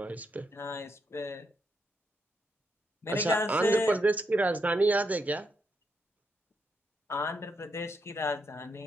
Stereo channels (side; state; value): both; normal; correlation 0.80